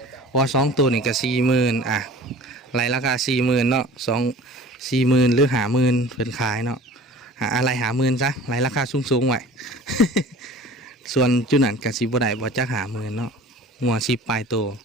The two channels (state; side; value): normal; both; correlation 0.43